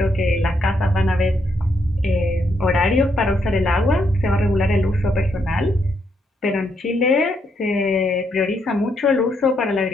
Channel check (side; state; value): both; normal; correlation 0.77